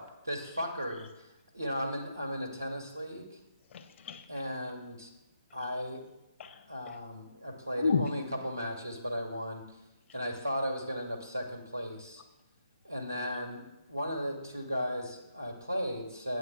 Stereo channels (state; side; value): inverted; both; correlation -0.82